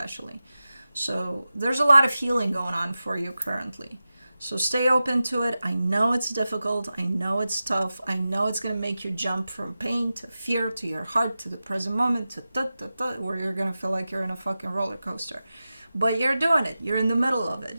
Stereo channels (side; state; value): both; inverted; correlation -0.94